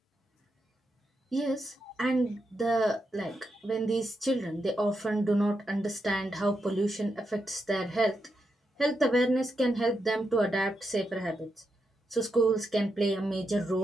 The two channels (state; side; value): normal; both; correlation 0.84